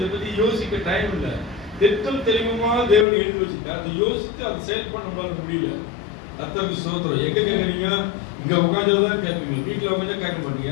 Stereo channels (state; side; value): drops out; right; at 3.1 s